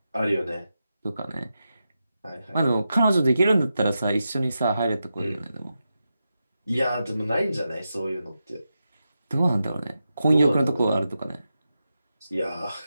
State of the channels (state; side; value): inverted; both; correlation -0.89